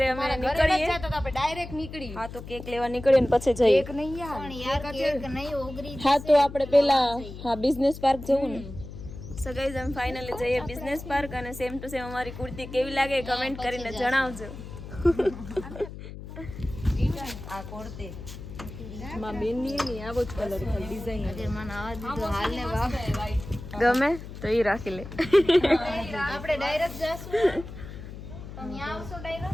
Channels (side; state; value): left; noise; hum, 12 dB below the sound